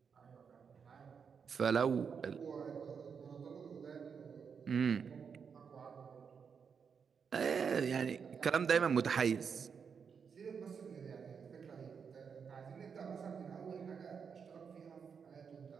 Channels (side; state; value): left; quieter; 6.4 dB